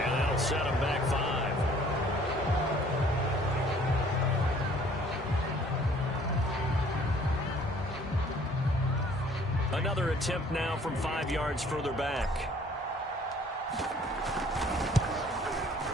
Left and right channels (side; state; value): both; normal; correlation 0.56